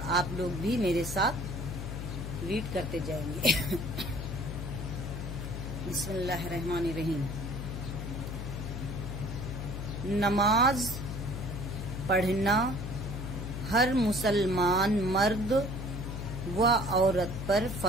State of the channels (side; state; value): left; noise; hum, 6 dB below the sound